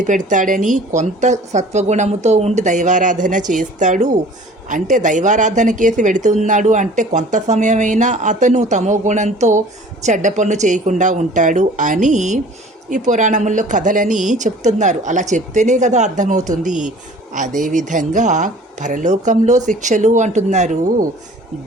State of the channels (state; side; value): normal; both; correlation 0.48